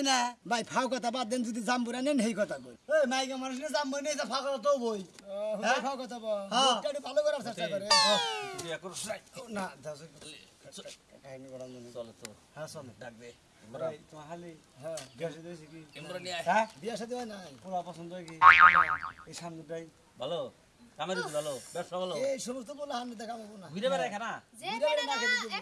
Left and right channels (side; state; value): both; identical; correlation 1.00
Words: না ভাই ফাও কথা বাদ দেন যদি জাম্বুরা নেন সেই কথা কই এই মাইকা মানুষ না জাম্বুরা নিয়ে যা ফাও কথা তো বই হ্যাঁ ফাও কথা বল হ্যাঁ একটু ভালো করার চেষ্টা করে না দাসে কাহিনী বড় মনে চলো চলো হ্যাঁ চল ডাক দে তোমার হালি হ্যাঁ গ্যাসে দিয়েছি কি ইমরান নিয়ে আয়। হ্যাঁ বিয়া সাথে হয় নাই পোলা পছন্দ হয় কি এই সামনেটাই ভালো কামের ভালো ব্যবসা ভালো এই সমস্ত পোলা হামনে দেখাবো না ঘুরে বেড়ায় খানা যে বেড়া